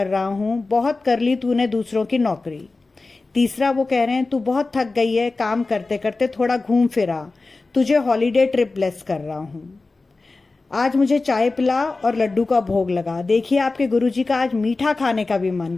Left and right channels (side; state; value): right; quieter; 3.6 dB